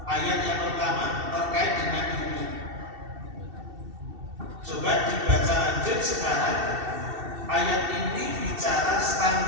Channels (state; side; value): late; left; 2.7 ms